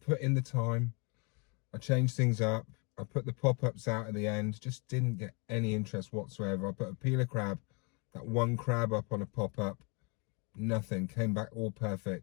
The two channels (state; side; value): quieter; right; 30.6 dB